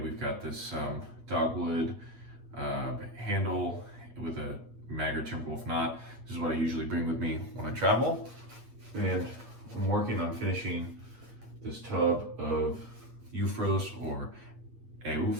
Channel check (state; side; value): late; left; 8.4 ms